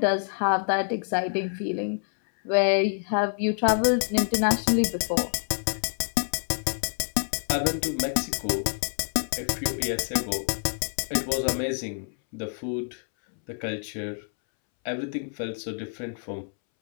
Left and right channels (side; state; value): right; silent; 60 dB below the other